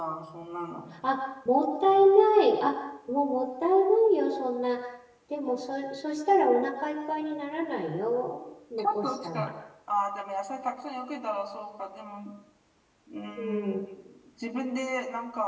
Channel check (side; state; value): both; identical; correlation 1.00